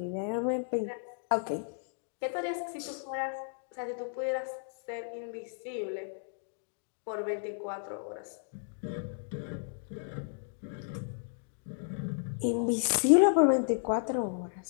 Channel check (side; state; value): right; silent; digital silence